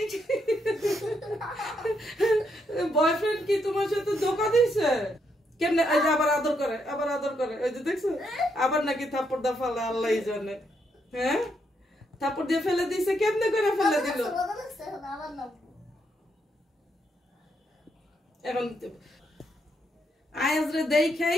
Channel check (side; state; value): both; normal; correlation 0.77